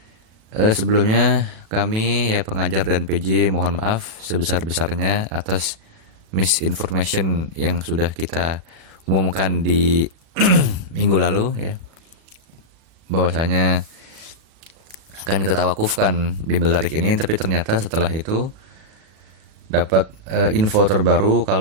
Sebelumnya kami pengajar dan PJ mohon maaf sebesar-besarnya atas misinformation yang sudah kita umumkan di minggu lalu bahwasanya akan kita tawakufkan bimbel tarikh ini, tapi ternyata setelah itu dapat info terbaru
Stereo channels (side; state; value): left; late; 37 ms